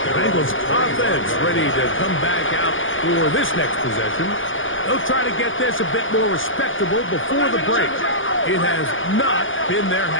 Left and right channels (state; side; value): late; right; 0.57 ms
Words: The Bengals offense ready to come back out for this next possession. They'll try to get this a bit more respectable before the break. It has not been their